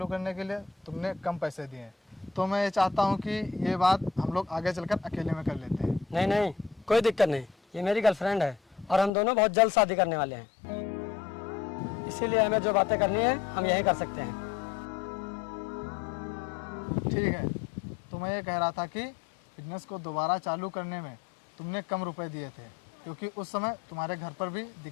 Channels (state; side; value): drops out; right; at 9.1 s